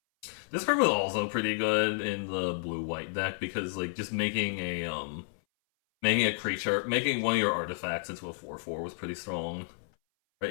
this card was also pretty good in the blue-white deck because like just making a creature, making one of your artifacts into a 4/4 was pretty strong. Right?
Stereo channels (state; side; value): silent; right; 57 dB below the other